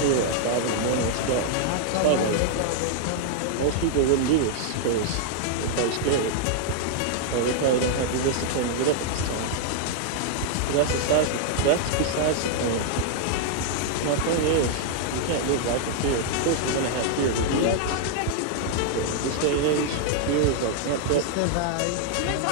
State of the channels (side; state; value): both; different; correlation 0.00